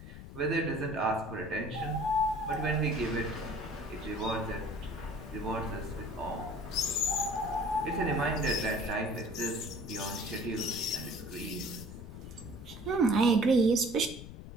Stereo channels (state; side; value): noise; left; rumble, 12 dB below the sound